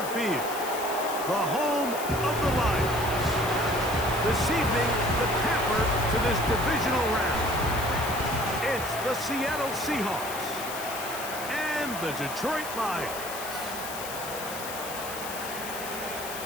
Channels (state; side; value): noise; left; hiss, 9 dB below the sound